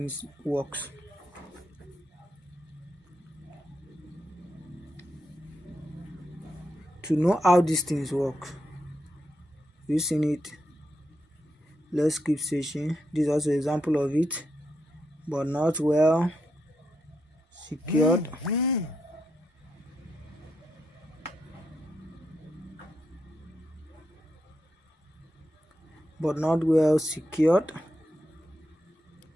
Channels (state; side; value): normal; both; correlation 0.83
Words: works. You seen it? Let's keep searching. This is also an example of it, but not well secured.